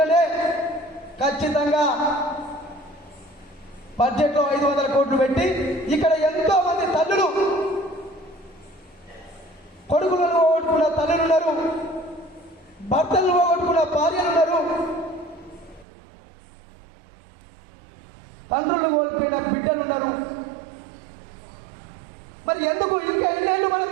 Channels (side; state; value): left; drops out; at 15.9 s